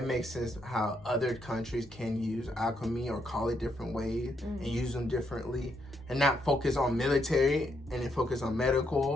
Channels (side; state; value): both; normal; correlation 0.77